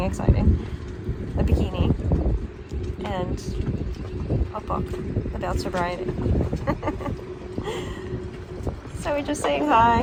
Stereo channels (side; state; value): both; identical; correlation 1.00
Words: exciting. A bikini. And a book about sobriety. So we're just saying